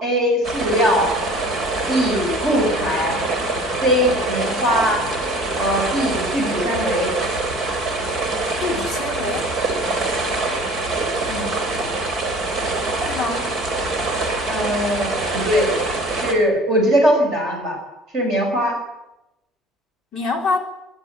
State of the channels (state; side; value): normal; both; correlation 0.47